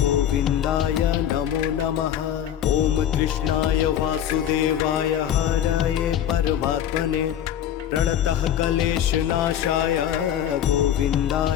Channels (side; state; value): right; quieter; 10.3 dB